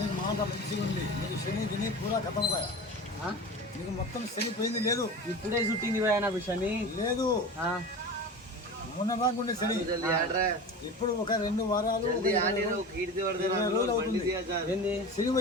మాట మంచిగా ఉంది. నీకు శని తిని పూరా ఖతం కదా. నీకు మొత్తం శని పోయింది లేదు. ఇప్పుడే చుట్టింది పోయా నాకు శని లేదు. మొన్న రాకుండే శని ఇప్పుడు ఒక 2 వారాలు 20 రోజులు అవుతుంది శని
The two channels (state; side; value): normal; both; correlation 0.31